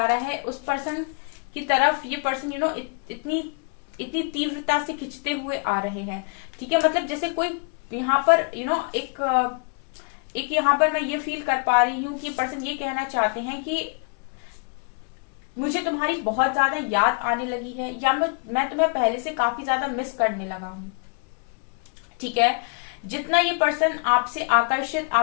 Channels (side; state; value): right; quieter; 38.0 dB